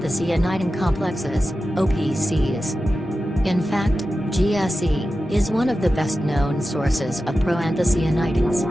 complexes, OPCs. In fact, GSE is one of the best-known sources of proanthocyanidins.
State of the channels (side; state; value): both; normal; correlation 0.93